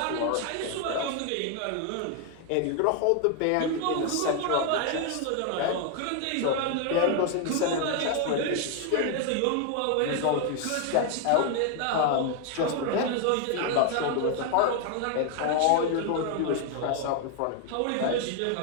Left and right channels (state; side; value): different; both; correlation 0.01